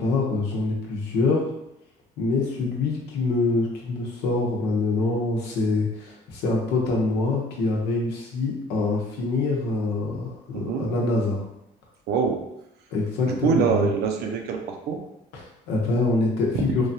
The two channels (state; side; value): normal; both; correlation 0.52